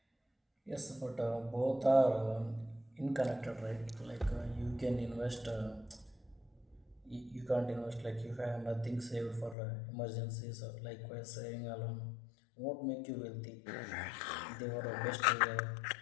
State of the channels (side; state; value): right; drops out; at 9.6 s